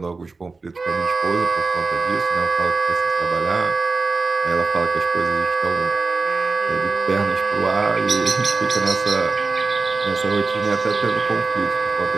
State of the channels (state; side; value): quieter; left; 4.0 dB